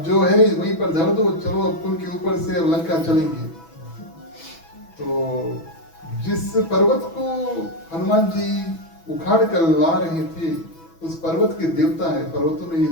जो है वहीं पर धर दो, चलो अब पुल के ऊपर से अब लंका चलेंगे। तो जिस पर्वत को हनुमान जी उखाड़ कर ला रहे थे, उस पर्वत के देवता है, पर्वतों में भी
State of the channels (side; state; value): right; late; 6.1 ms